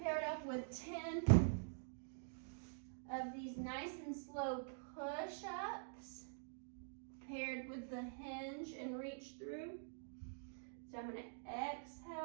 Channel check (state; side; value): silent; left; digital silence